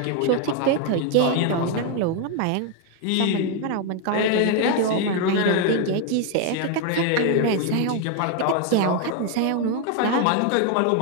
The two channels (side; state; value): both; different; correlation 0.01